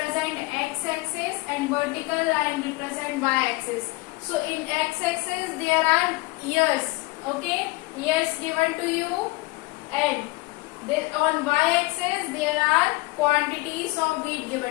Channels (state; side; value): quieter; right; 23.0 dB